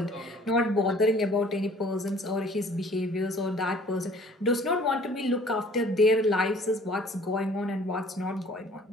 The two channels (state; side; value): normal; both; correlation 0.53